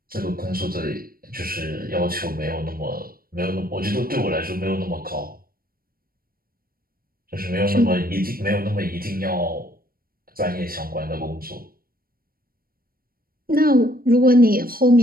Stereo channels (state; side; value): late; left; 0.43 ms